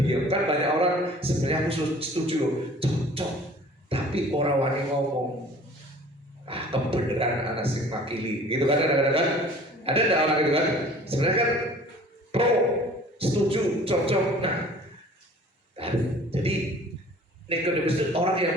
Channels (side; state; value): both; normal; correlation 0.48